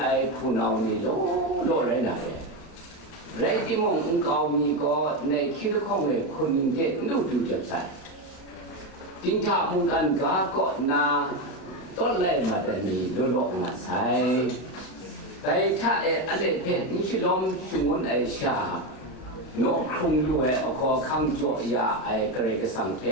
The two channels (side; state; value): right; late; 32 ms